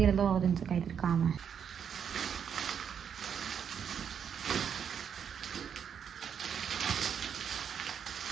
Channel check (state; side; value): quieter; left; 7.8 dB